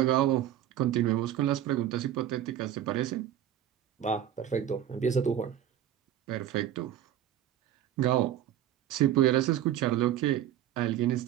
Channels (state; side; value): quieter; left; 11.2 dB